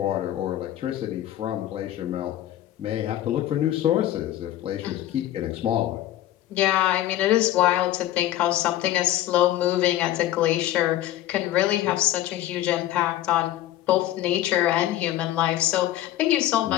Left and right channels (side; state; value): right; quieter; 13.5 dB